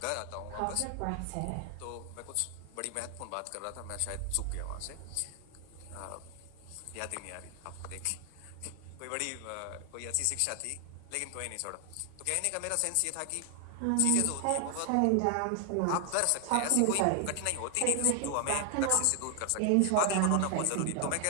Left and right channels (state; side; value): different; both; correlation 0.00